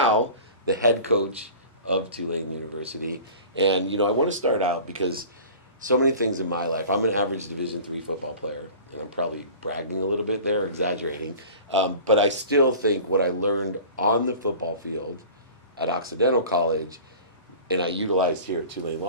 the head coach of Tulane University. And I want to start out because so many things in my life. I'm an average Division III football player, and I'm probably bragging a little bit there, exaggerating. But I still think what I learned on the football field at Occidental College, and I utilized here at Tulane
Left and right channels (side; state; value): both; inverted; correlation -0.41